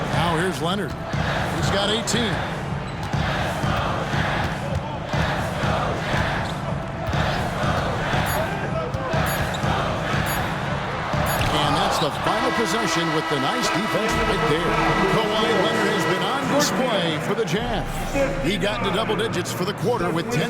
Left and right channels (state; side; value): identical; both; correlation 1.00